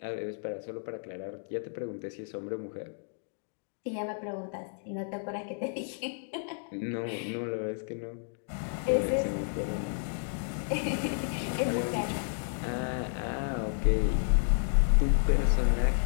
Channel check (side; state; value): right; silent; digital silence